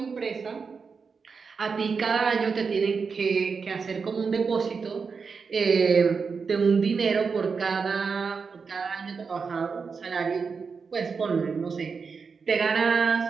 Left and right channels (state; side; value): quieter; left; 5.3 dB